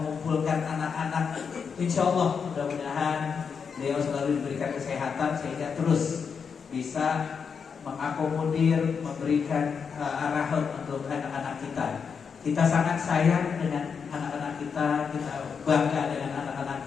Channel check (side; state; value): right; quieter; 6.2 dB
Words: anak-anak. Insya Allah mudah-mudahan beliau selalu diberikan kesehatan sehingga terus bisa mengakomodir, memberikan arahan untuk anak-anak kita. Kita sangat sayang dengan anak-anak kita, kita bangga dengan anak-anak